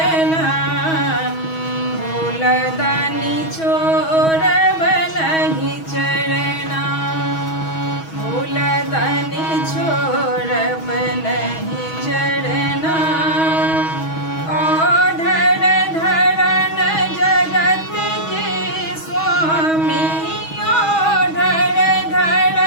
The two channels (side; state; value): right; late; 6.2 ms